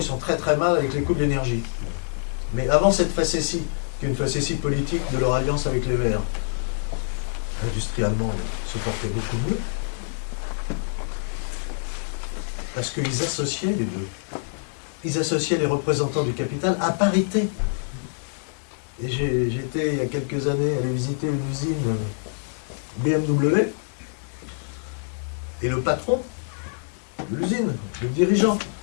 sont très très mal avec les coûts de l'énergie. Mais avant cette facétie, qui est une facétie politique de leur alliance avec les Verts, l'industrie allemande se portait beaucoup mieux, parce qu'ils associaient les deux. Ils associaient les représentants du capital à parité. Et j'étais, il y a quelques années, allé visiter une usine BMW, et le patron de l'usine, le dirigeant,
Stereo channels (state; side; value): silent; right; digital silence